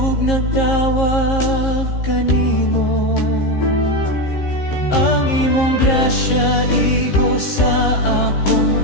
nagtawag kanimo. Ang imong grasya igo sa akong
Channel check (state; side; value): late; right; 15 ms